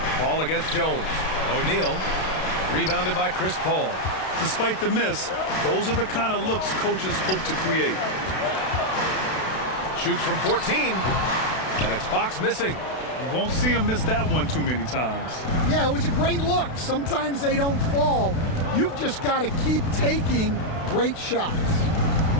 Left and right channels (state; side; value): late; right; 32 ms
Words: Paul against Jones. O'Neal rebounded by Chris Paul. Despite the miss, those are the kind of looks coaches hope to create. Shoots from 14, and it's Fox missing. You won't see him miss that one too many times. Yeah, it was a great look. Sometimes they don't fall. You've just got to keep taking great shots.